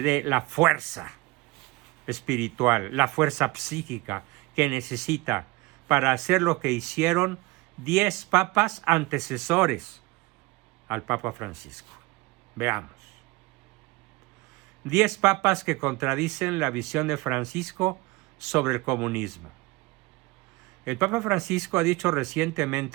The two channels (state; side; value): quieter; left; 23.2 dB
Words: dé la fuerza espiritual, la fuerza psíquica que necesita para hacer lo que hicieron 10 papas antecesores al Papa Francisco. Veamos. 10 papas que contradicen la visión de Francisco sobre el comunismo. El Papa Francisco ha dicho